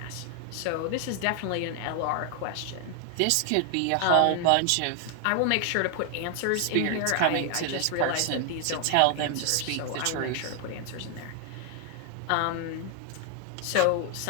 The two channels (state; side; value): different; both; correlation 0.00